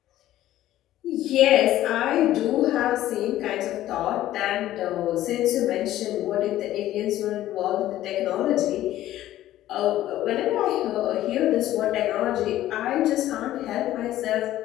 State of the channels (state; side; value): quieter; right; 13.9 dB